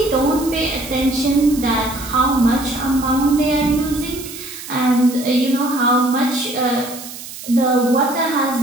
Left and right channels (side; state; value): right; noise; hiss, 13 dB below the sound